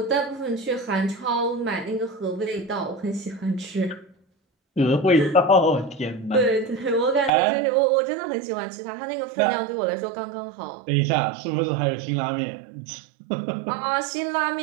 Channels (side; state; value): left; drops out; at 7.3 s